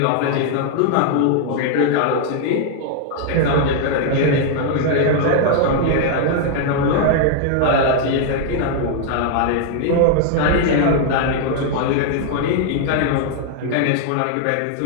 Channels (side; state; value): both; different; correlation 0.00